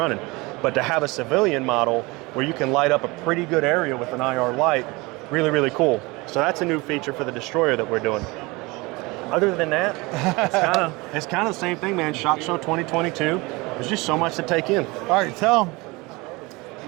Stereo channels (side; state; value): left; quieter; 24.2 dB